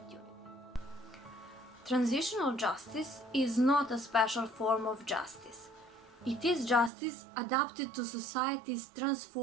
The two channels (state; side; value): drops out; left; at 6.9 s